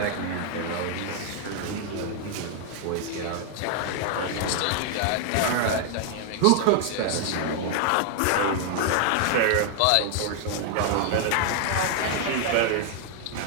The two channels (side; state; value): both; different; correlation 0.00